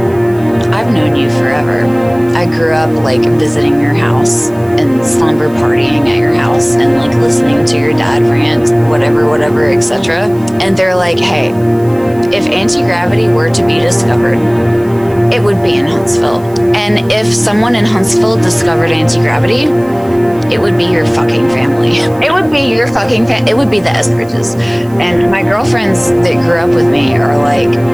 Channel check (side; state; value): right; noise; hiss, 26 dB below the sound